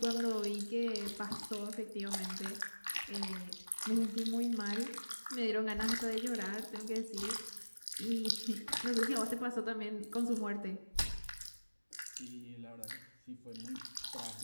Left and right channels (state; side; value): inverted; both; correlation -1.00